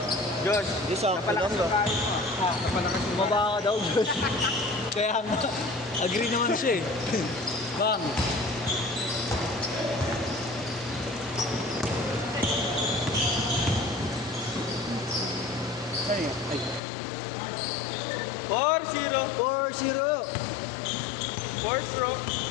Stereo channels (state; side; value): drops out; right; at 16.8 s